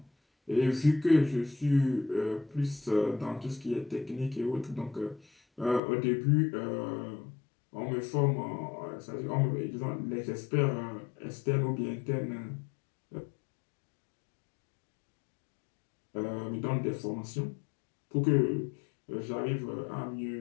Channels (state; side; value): drops out; right; at 5.8 s